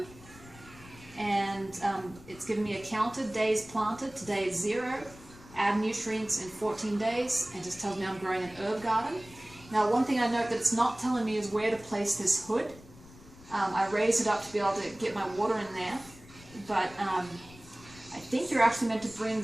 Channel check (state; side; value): noise; left; rumble, 20 dB below the sound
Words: And it's giving me a counter, days planted. Today is 0. Add nutrients in 14 days. And just tells me I'm growing an herb garden. Now, one thing I note that it's not telling me is where to place this hood. I raised it up to be able to get my water in there, but I think you're actually meant to bring